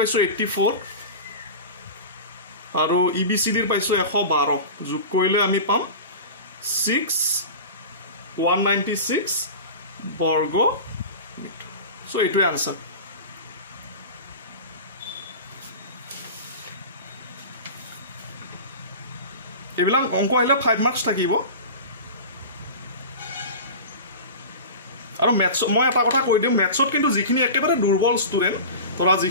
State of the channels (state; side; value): inverted; both; correlation -0.31